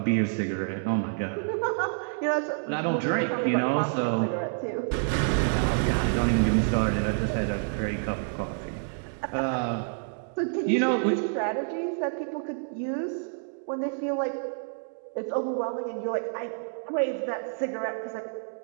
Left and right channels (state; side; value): silent; left; digital silence